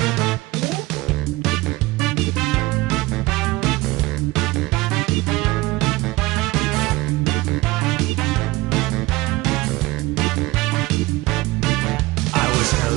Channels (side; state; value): left; quieter; 20.3 dB